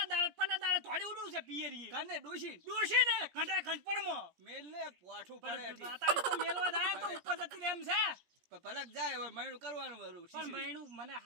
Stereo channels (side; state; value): left; late; 17 ms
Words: દાડે થોડી ઉડું છે પિયરી કને ડોશી ને ઘંટા ઘંટપણમાં મેલ ને પોઠું પડે પણ તારી તો મેલવા જાય તો ઉપર જતી રહે એમ છે પલક જાય હવે મહિનું કરવાનું વરું પણ મહિનું મને